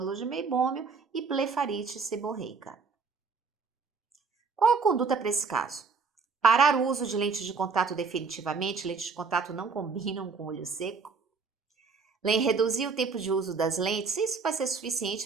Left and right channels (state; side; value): quieter; left; 5.0 dB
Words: de meibômio e blefarite seborreica. Qual a conduta para esse caso? Parar o uso de lentes de contato definitivamente, lentes de contato não combinam com olho seco. Reduzir o tempo de uso das lentes, isso vai ser